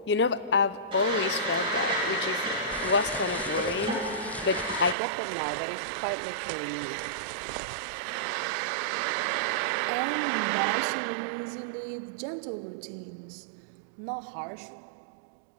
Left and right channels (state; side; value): drops out; left; at 5.0 s